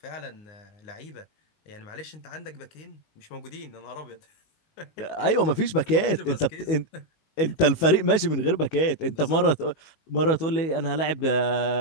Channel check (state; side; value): late; right; 19 ms